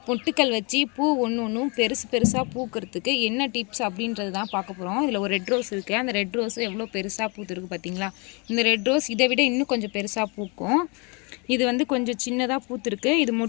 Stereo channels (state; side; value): quieter; right; 31.7 dB